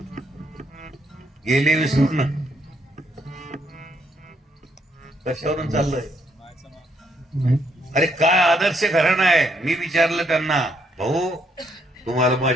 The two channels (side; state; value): both; normal; correlation 0.72